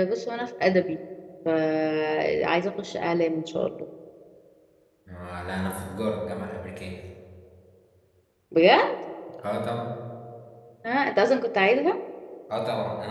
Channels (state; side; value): identical; both; correlation 1.00